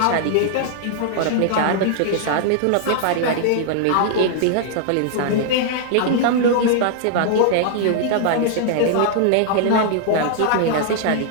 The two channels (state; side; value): different; both; correlation -0.01